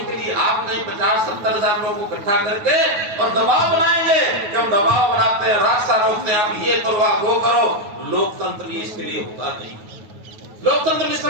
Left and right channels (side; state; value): left; late; 9.3 ms